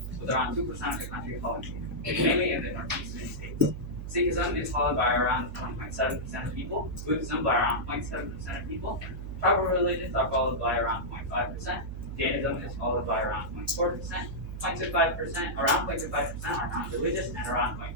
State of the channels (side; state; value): right; noise; hum, 8 dB below the sound